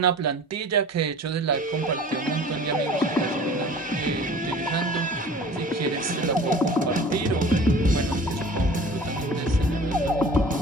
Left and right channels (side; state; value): both; normal; correlation 0.43